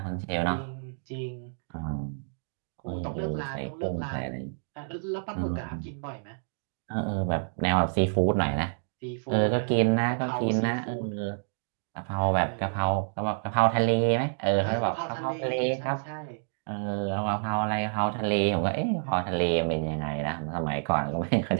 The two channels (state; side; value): silent; left; digital silence